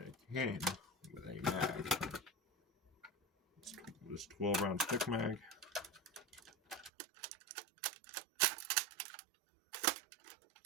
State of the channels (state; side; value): drops out; left; at 6.9 s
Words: it came with a mag. It's this 12-round stick mag.